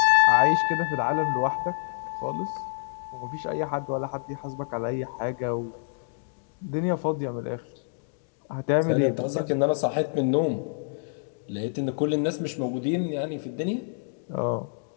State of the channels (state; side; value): silent; right; digital silence